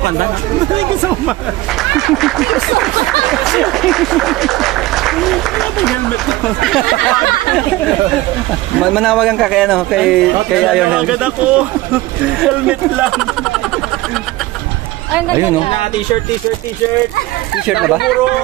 Thank you so much. Helmet ko. Manawagan ka kay ano, kay Iron Man. Agad ako. Helmet lang. Ay, ang ganda Ayun, niya. T-shirt. T-shirt na ba?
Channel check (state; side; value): quieter; left; 18.3 dB